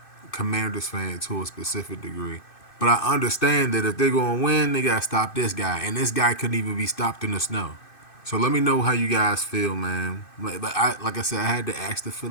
Commanders fan to a specific degree. But I understand that if they're going to win, they got to stop this guy. And this guy couldn't even be stopped in the snow. So let me know how you guys feel, man. Like I said, I had to ask the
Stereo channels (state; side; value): late; right; 2.6 ms